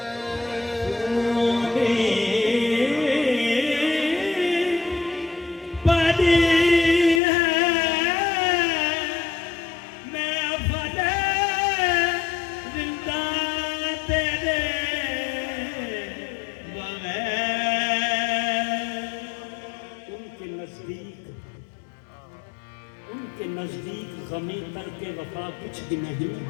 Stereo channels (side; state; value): right; drops out; at 7.2 s